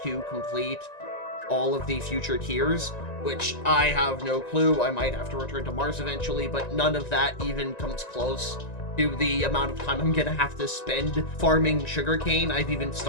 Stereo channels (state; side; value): late; right; 1.9 ms